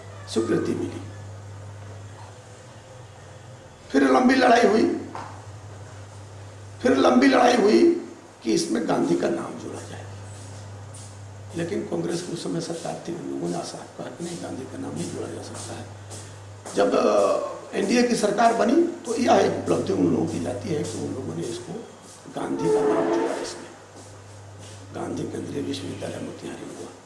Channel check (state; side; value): identical; both; correlation 1.00